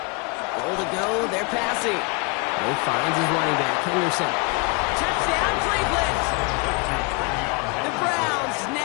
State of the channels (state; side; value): quieter; right; 29.9 dB